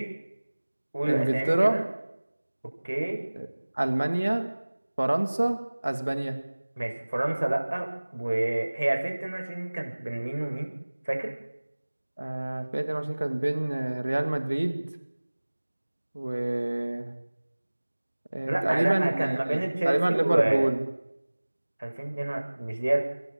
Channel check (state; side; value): inverted; both; correlation -1.00